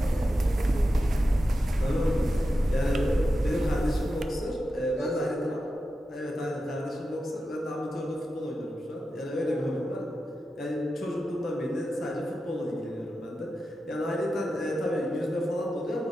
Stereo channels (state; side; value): normal; both; correlation 0.90